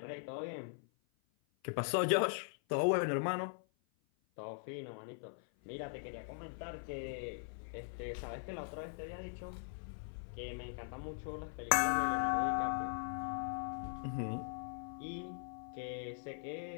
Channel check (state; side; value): silent; right; 51 dB below the other